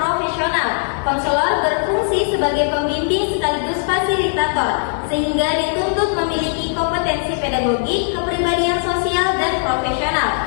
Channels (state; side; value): silent; right; 67 dB below the other